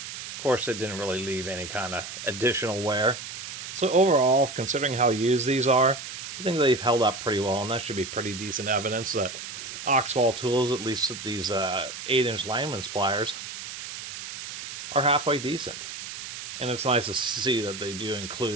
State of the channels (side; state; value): right; noise; hiss, 9 dB below the sound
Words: Of course, it didn't really leave any kind of additional wear. So overall, considering how used these are, I think they've held up pretty well, and that should be pretty decent evidence that Oxwall tools, at least these 8-inch Linemen's pliers, are halfway decent. And it's nice to see that they do